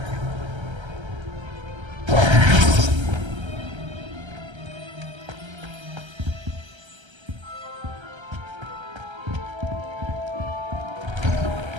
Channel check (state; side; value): late; left; 1.3 ms